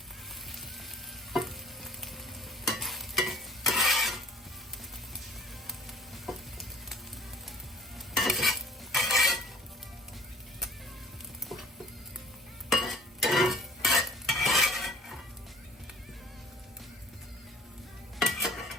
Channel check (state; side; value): normal; both; correlation 0.51